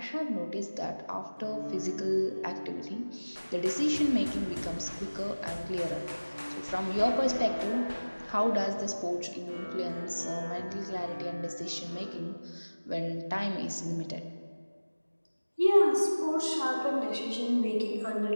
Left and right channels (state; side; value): inverted; both; correlation -1.00